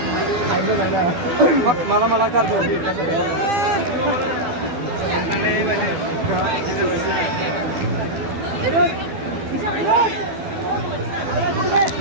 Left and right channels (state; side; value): late; left; 12 ms